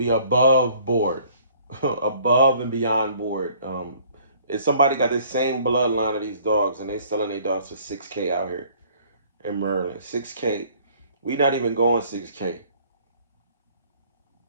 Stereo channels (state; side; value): inverted; both; correlation -0.56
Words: be above board, above and beyond board. If somebody got the same bloodline of these dogs and they selling their dogs for $6K out here in Maryland, $6K, we not even going $6K.